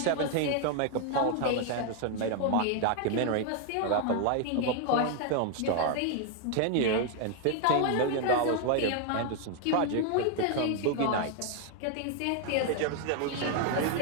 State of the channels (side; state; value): both; different; correlation 0.00